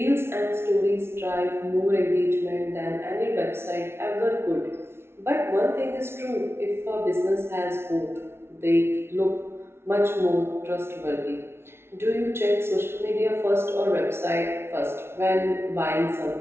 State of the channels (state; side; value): late; left; 0.12 ms